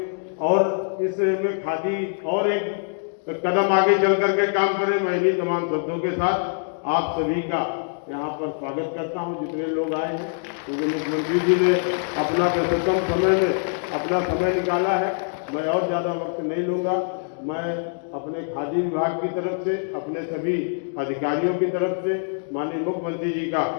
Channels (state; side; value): silent; right; digital silence